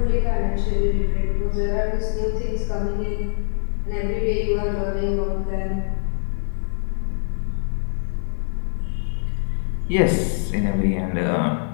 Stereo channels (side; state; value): right; silent; digital silence